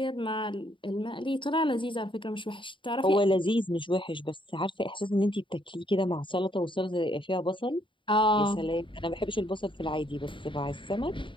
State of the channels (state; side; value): late; right; 0.24 ms